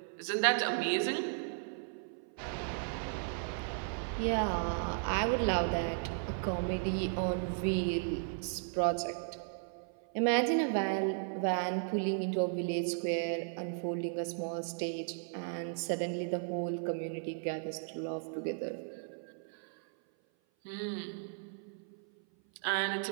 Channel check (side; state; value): left; silent; 54 dB below the other